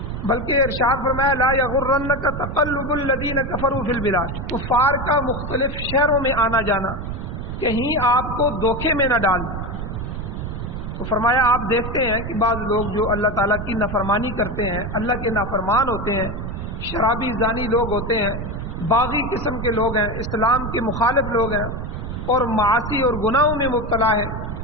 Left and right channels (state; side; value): noise; right; rumble, 6 dB below the sound